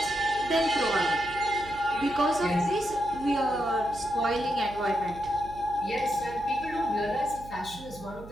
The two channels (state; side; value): noise; right; hum, 16 dB below the sound